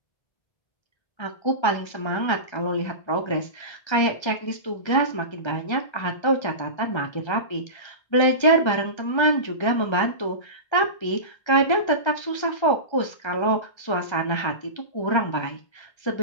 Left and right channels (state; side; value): late; right; 1.3 ms